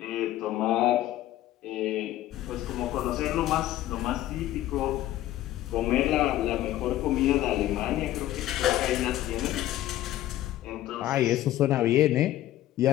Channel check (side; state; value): right; quieter; 14.1 dB